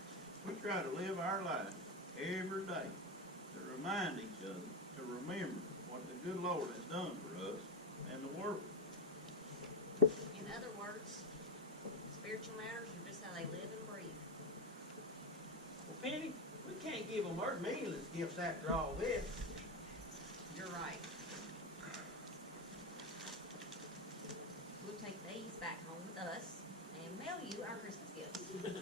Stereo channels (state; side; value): normal; both; correlation 0.14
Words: we try to live our life every day to remind each other to remember what the good Lord has done for us and the world. In other words, spiritual matters are just how they live and breathe. Well, Penny, we can't give them our meaningless gifts after all this. You're right. We'll take these back home with us and mail you our Christmas gifts.